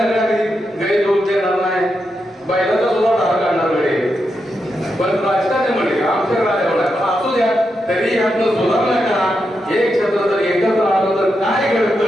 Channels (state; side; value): normal; both; correlation 0.85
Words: गैर लोक देणार नाही, बैलाचा सुद्धा धार काढणार वेळे. पण राजकारणी म्हणजे आमच्याकडे आल्यावर नाही. पण असू द्या तरी यातनं सुधारणा करा. एक क्षेत्र जर एकत्र आलं तर काय